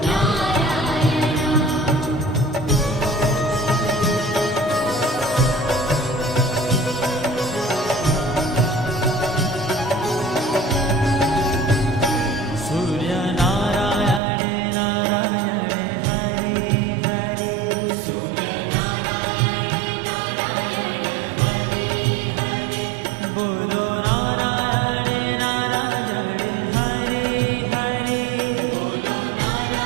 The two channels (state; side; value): drops out; left; at 14.2 s